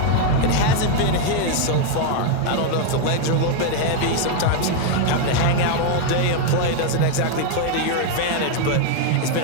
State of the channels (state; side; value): different; both; correlation 0.01